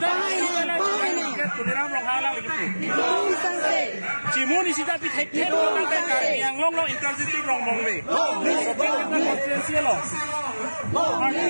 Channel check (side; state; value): both; inverted; correlation -1.00